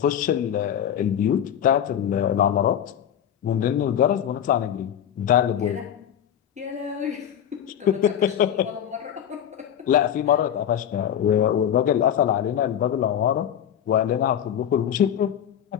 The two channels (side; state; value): right; quieter; 9.8 dB